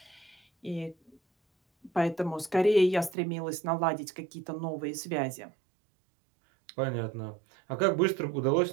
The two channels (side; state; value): left; drops out; at 3.2 s